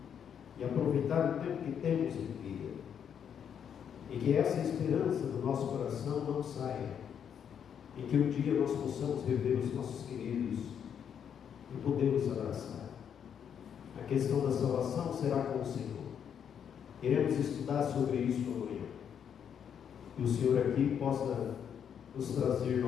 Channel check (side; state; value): right; quieter; 8.2 dB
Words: e aproveitar o tempo que temos em vida, e que essa esperança do nosso coração não saia, em que um dia nós possamos rever os nossos queridos e podemos abraçar. A questão da salvação será com o Senhor. Iremos estudar sobre isso amanhã. Que o Senhor aqui possa nos trazer